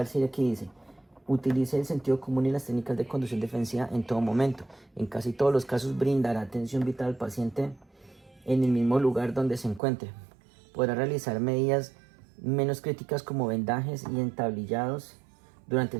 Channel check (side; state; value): left; drops out; at 9.8 s